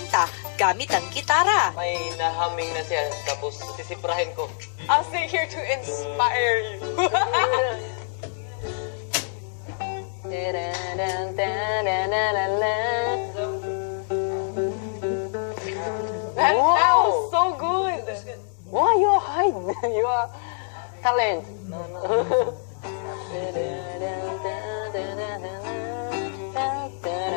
gamit ang gitara. May nahaming na siya, tapos sisiprahin ko. I'll stay here to inspire you. That sounds so good. Why you hide? You are talent.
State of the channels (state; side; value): silent; right; digital silence